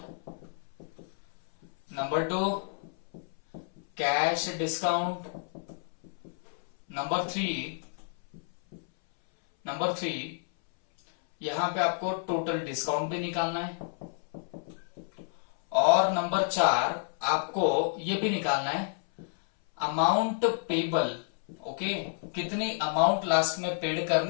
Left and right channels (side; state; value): right; silent; 58 dB below the other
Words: number 2 cash discount, number 3 यहां पे आपको टोटल डिस्काउंट भी निकालना है, और नंबर 4 आपको ये भी निकालना है अमाउंट पेबल, ओके, कितनी अमाउंट लास्ट में पेड